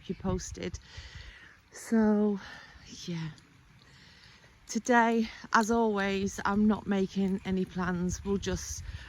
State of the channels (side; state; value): both; identical; correlation 1.00